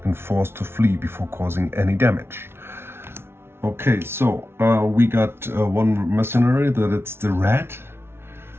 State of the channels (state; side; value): late; left; 0.12 ms